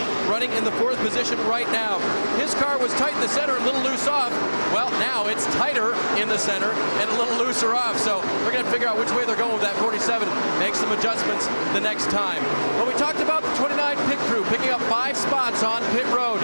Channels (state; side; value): inverted; both; correlation -1.00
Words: running in the 4th position right now. His car was tight in the center, a little loose off. Well, now it's tighter in the center and a little looser off. So we're going to figure out which way they're going with that 47. Make some adjustments the next time. But we talked about the 29 pit crew picking up 5 spots on pit road.